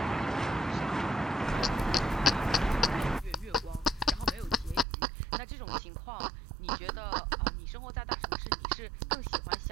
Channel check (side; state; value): left; drops out; at 4.9 s